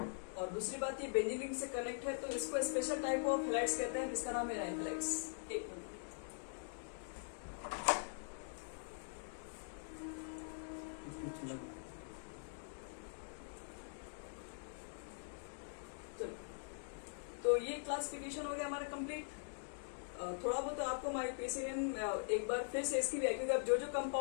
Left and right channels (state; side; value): silent; right; digital silence